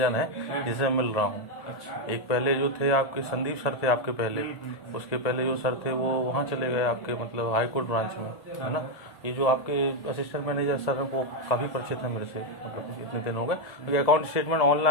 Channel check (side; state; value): right; late; 1.7 ms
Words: हैं जिसे मिल रहा हूँ। अच्छा। एक पहले जो थे आपके संदीप सर थे आपके पहले, उसके पहले जो सर थे वो वहाँ चले गए आपके, मतलब हाई कोर्ट ब्रांच में, है ना। ये जो आपके असिस्टेंट मैनेजर सर हैं वो काफ़ी परिचित है मेरे से, मतलब इतने दिन हो गए, क्योंकि अकाउंट स्टेटमेंट